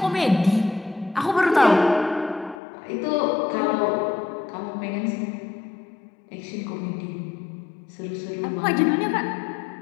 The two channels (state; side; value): drops out; right; at 2.6 s